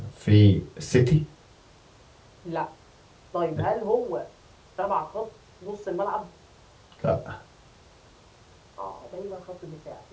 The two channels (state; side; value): identical; both; correlation 1.00